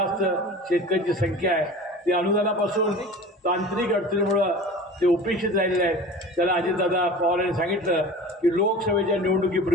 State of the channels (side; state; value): both; normal; correlation 0.38